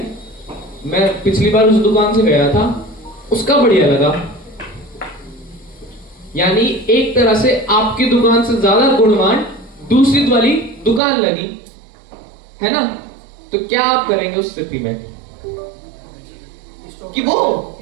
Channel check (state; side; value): drops out; left; at 11.0 s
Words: मैं पिछली बार उस दुकान से गया था, उसका बढ़िया लगा। यानी एक तरह से आपकी दुकान से ज्यादा गुणवान दूसरी वाली दुकान लगी, है ना? तो क्या आप करेंगे उस स्थिति में? कि वो